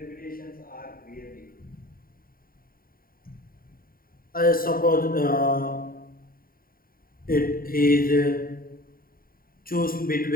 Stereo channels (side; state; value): right; late; 0.42 ms